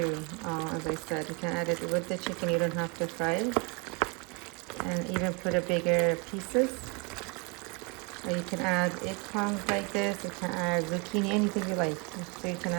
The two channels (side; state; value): left; quieter; 30.8 dB